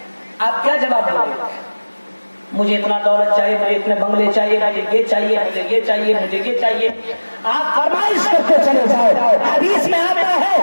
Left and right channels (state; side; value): inverted; both; correlation -1.00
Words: آپ کیا جواب دیں گے؟ مجھے اتنا دولت چاہیے، مجھے اتنے بنگلے چاہیے، مجھے یہ چاہیے، مجھے یہ چاہیے، مجھے یہ چاہیے، آپ فرمائش کرتے چلے جاؤ۔ حدیث میں آتا